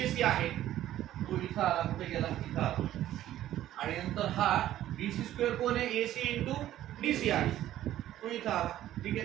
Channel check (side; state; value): left; quieter; 13.1 dB